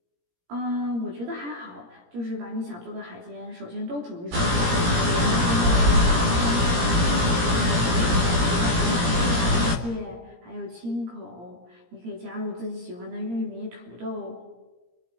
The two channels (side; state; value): left; late; 17 ms